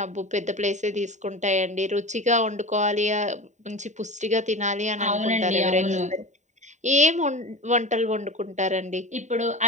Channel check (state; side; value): late; left; 0.34 ms